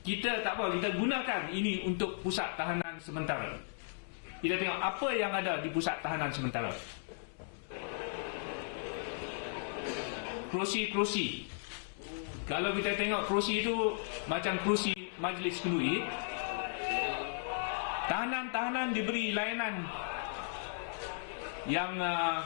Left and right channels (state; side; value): silent; right; digital silence